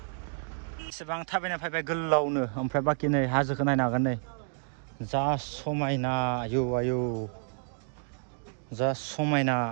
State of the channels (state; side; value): silent; left; 56 dB below the other